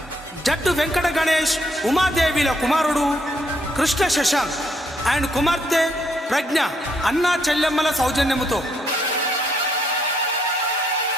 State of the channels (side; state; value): both; normal; correlation 0.72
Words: జట్టు వెంకట గణేష్ ఉమాదేవిల కుమారుడు కృష్ణ శశాంక్ అండ్ కుమార్తె ప్రజ్ఞ అన్నా చెల్లెమ్మల సౌజన్యముతో